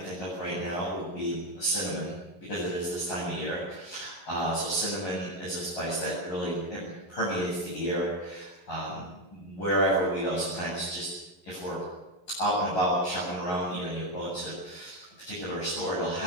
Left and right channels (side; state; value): right; late; 11 ms